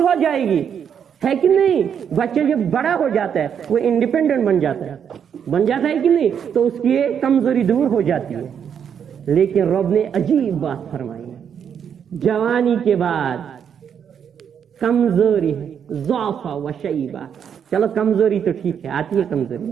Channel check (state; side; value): quieter; left; 8.0 dB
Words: ہو جائے گی, ہے کہ نہیں؟ بچہ جب بڑا ہو جاتا ہے وہ انڈیپینڈنٹ بن جاتا ہے کہ نہیں, تو اس کی یہ کمزوری دور ہو جاتی ہے. لیکن رب نے عجیب بات فرمائی ہے, جوانی کے بعد کمزوری ہے, ضعف و شیبہ. چلو کمزوری تو ٹھیک ہے, آتی ہے کمزوری,